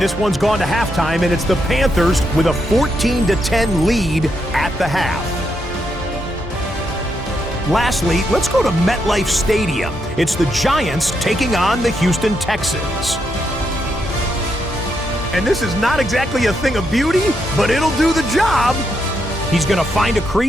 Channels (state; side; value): normal; both; correlation 0.80